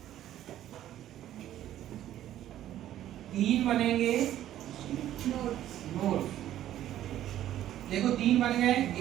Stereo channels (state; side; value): quieter; left; 12.4 dB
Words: तीन बनेंगे नोट्स। देखो 3 बन गए,